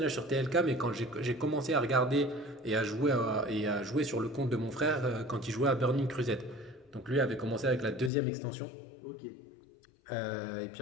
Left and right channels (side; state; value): right; drops out; at 8.1 s